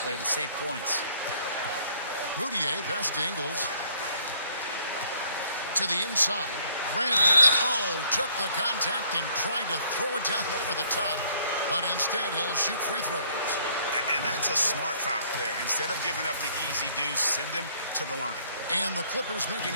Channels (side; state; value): both; inverted; correlation -0.62